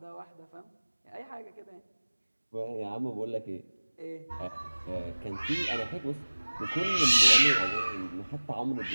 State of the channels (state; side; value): inverted; both; correlation -1.00